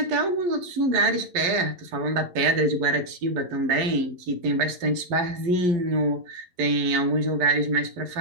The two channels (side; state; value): left; late; 11 ms